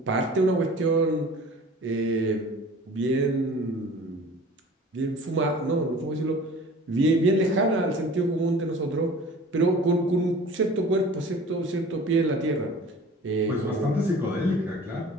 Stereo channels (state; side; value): normal; both; correlation 0.44